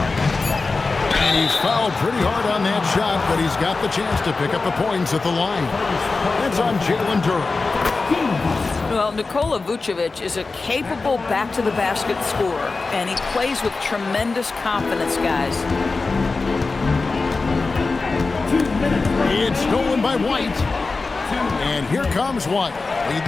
And he's fouled pretty hard on that shot, but he's got the chance to pick up the points at the line. That's on Jalen Durham. Well, Nikola Vucevic is a capable back-to-the-basket scorer, and he plays with tremendous confidence, guys. It's stolen by White. And here comes White,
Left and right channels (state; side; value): quieter; right; 3.9 dB